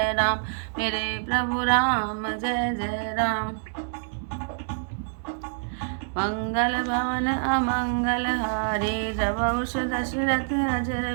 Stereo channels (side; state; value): left; silent; digital silence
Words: राम। मेरे प्रभु राम जय जय राम। मंगल भवन अमंगल हारी द्रवहुष दशरथ